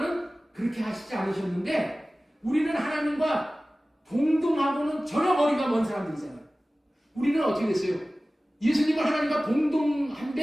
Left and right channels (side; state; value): both; normal; correlation 0.97